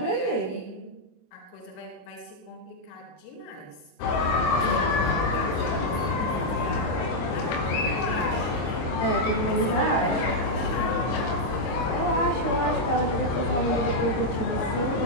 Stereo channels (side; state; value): right; late; 25 ms